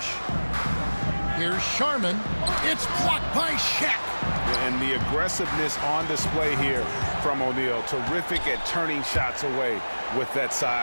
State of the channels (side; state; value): both; inverted; correlation -1.00